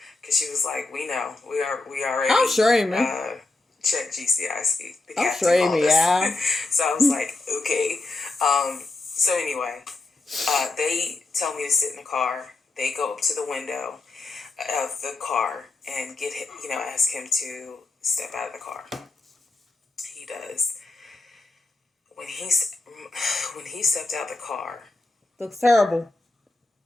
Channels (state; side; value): quieter; right; 3.2 dB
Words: because she was like, we know. We already. I'm sure, man. Check GCIC. I'm sure, yeah. So I was like, okay. So anyway, they tell me to sit in the car. They go up to the window of the car and get him, you know, ask him to step out of the car. He does. when he stepped out the car, Looks terrible.